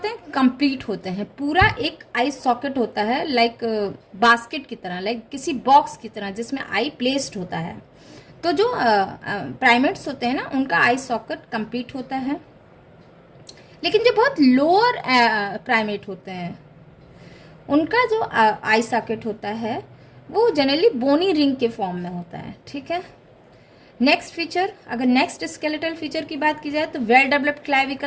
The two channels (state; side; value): identical; both; correlation 1.00